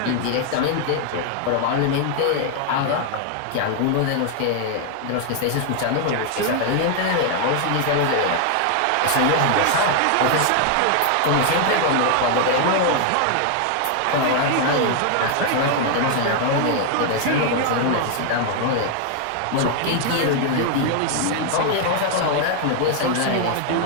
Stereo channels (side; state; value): both; different; correlation 0.00